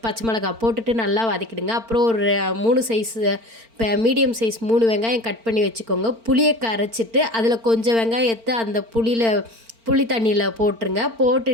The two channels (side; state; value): left; late; 4.4 ms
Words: பச்சை மிளகாய் போட்டுட்டு நல்லா வதக்கிடுங்க. அப்புறம் ஒரு 3 சைஸ் இப்போ மீடியம் சைஸ் 3 வெங்காயம் கட் பண்ணி வச்சுக்கோங்க. புளியை கரைச்சிட்டு அதில் கொஞ்சம் வெங்காயத்தை அந்த புளி தண்ணியில் போட்டுருங்க.